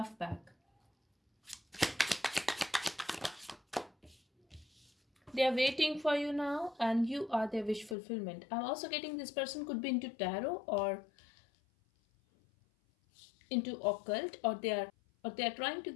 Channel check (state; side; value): drops out; right; at 8.0 s